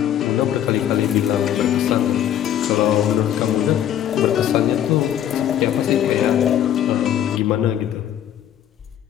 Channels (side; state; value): right; quieter; 10.6 dB